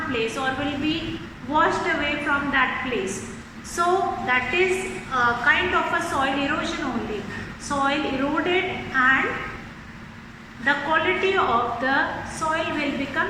place or will be washed away from that place. So that is a kind of a soil erosion only. Soil eroded and the quality of the soil will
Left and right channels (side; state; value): both; identical; correlation 1.00